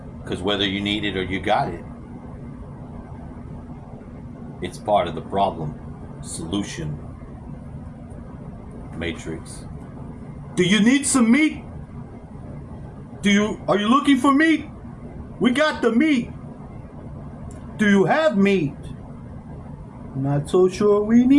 Because whether you need it or you got it, it's part of the problem solution matrix. Do you need some meat? Are you looking for meat? We got the meat. Do you have meat? Not so sure we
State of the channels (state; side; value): identical; both; correlation 1.00